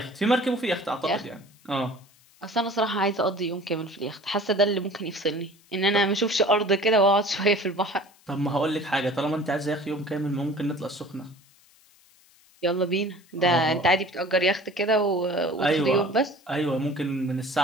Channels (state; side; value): noise; left; hiss, 30 dB below the sound